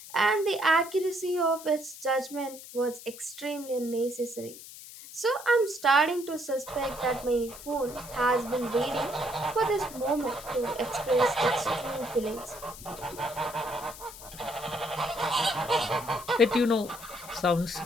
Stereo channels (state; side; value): noise; left; hiss, 15 dB below the sound